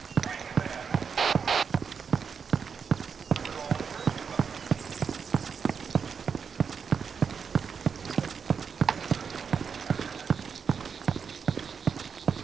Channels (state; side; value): quieter; left; 6.3 dB